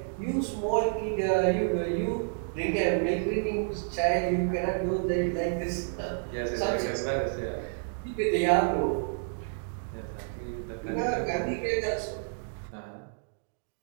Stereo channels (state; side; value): silent; left; digital silence